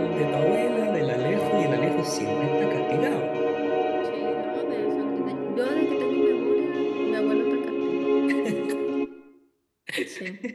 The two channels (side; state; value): both; identical; correlation 1.00